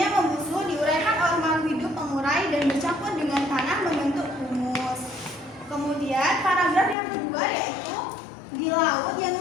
membusuk, diuraikan oleh makhluk hidup pengurai dan bercampur dengan tanah membentuk humus. Kemudian paragraf yang kedua yaitu di laut yang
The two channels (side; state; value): right; drops out; at 7.0 s